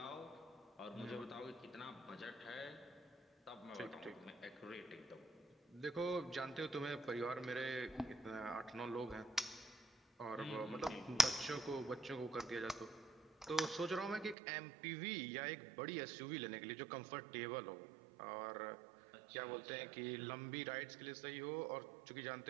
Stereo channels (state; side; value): drops out; left; at 14.4 s